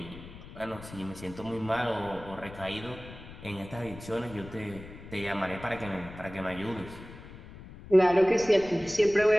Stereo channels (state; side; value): noise; left; rumble, 15 dB below the sound